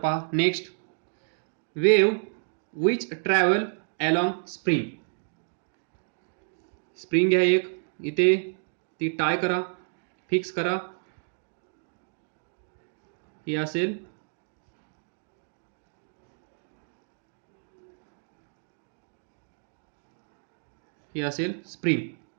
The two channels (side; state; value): left; silent; digital silence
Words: next, wave which travel along spring. Spring आहे एक, इथे ती टाय करा, फिक्स करा, ही असेल स्प्रिंग.